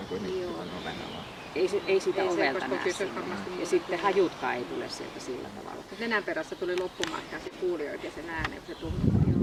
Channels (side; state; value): both; identical; correlation 1.00